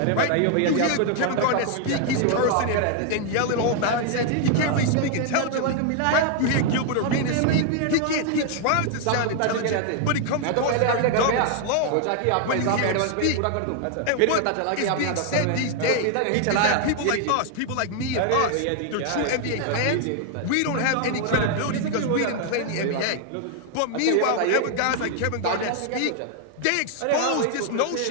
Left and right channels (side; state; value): both; different; correlation 0.00